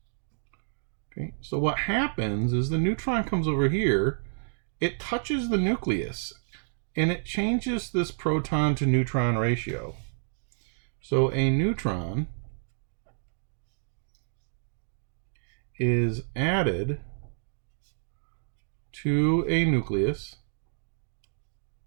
Okay. So what happens is the neutron comes over here. It touches the nucleus and it changes this proton to neutron ratio. So a neutron is added to a nucleus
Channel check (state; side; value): silent; left; digital silence